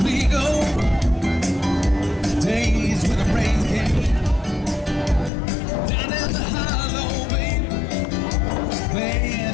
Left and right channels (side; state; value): right; drops out; at 5.3 s